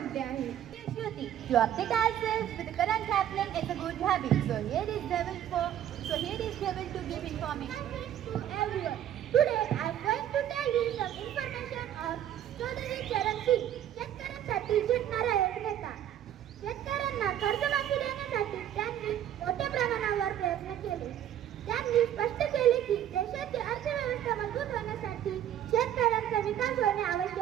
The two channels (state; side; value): quieter; left; 11.0 dB